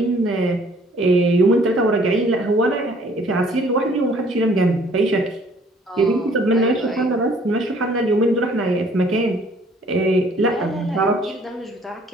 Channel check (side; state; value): both; normal; correlation 0.58